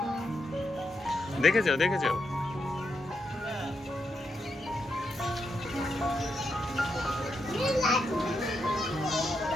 দেখে যাও, দেখে যাও।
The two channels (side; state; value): both; normal; correlation 0.83